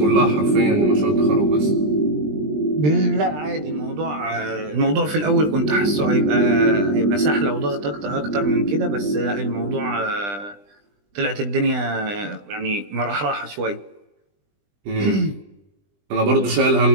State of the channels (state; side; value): late; left; 20 ms